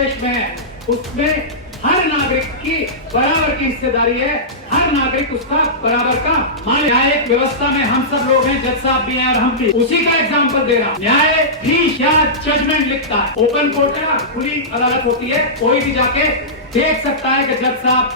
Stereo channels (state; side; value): normal; both; correlation -0.16